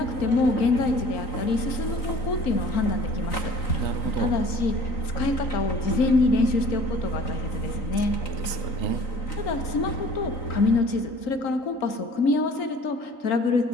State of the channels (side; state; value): right; late; 3.9 ms